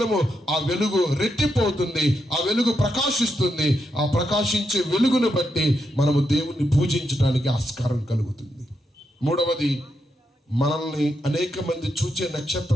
ఆ వెలుగు రెట్టిపోతుంది. ఆ వెలుగు ప్రకాశిస్తుంది. ఆ ప్రకాశించే వెలుగును బట్టి మనము దేవుణ్ణి పూజించడానికి ఆస్కారం కలుగుతుంది. మూడవది, మనల్ని అనేక మంది చూచే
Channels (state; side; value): normal; both; correlation 0.83